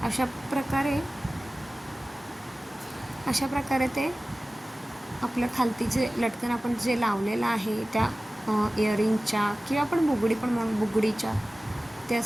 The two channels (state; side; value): normal; both; correlation 0.97